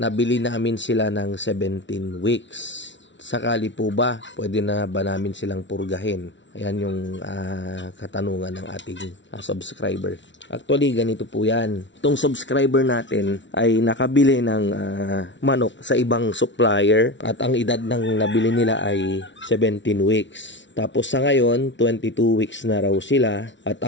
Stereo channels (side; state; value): right; late; 0.54 ms